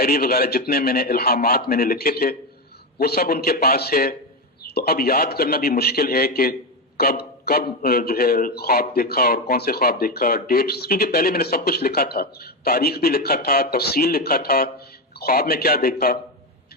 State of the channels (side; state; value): both; normal; correlation 0.12